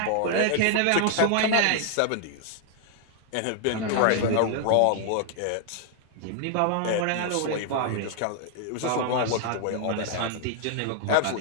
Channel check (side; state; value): both; different; correlation 0.00